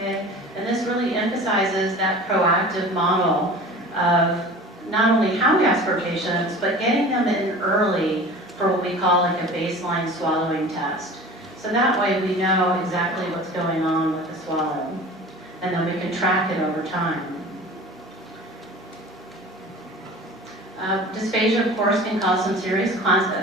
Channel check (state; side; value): normal; both; correlation 0.40